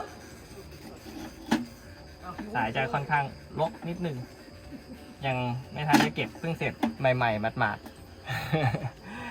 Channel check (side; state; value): both; identical; correlation 1.00